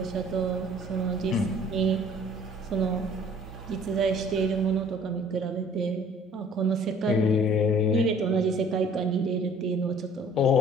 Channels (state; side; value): normal; both; correlation 0.53